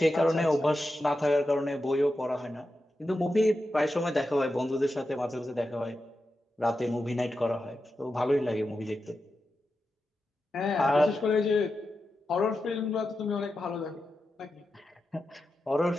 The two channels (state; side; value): normal; both; correlation 0.90